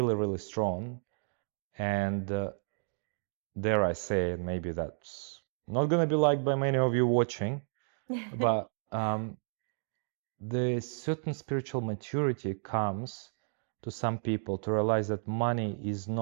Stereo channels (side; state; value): left; silent; digital silence